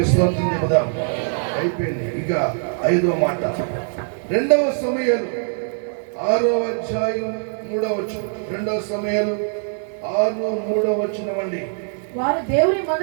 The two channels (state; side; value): silent; left; 61 dB below the other